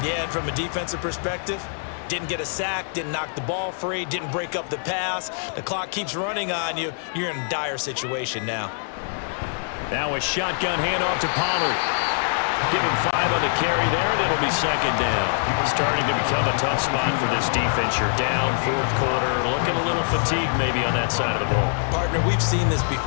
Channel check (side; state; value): right; silent; 60 dB below the other